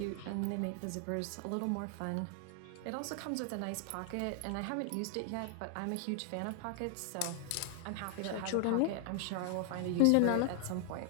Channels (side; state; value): both; different; correlation 0.00